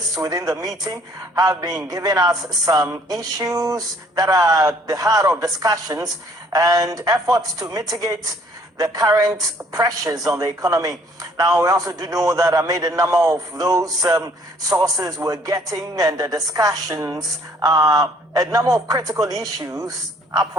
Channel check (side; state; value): both; normal; correlation 0.60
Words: within the meeting have been giving us some issues that are the heart of discussions and efforts to mitigate the current pressures on the economy. Now, we also do know that amid a number of those sources we're getting and the discussions, a number of critical issues,